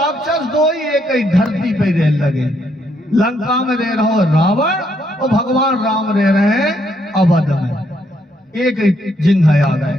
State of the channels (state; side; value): normal; both; correlation 0.73